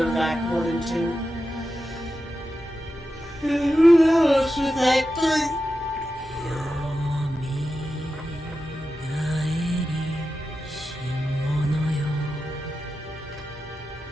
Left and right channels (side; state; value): both; normal; correlation 0.91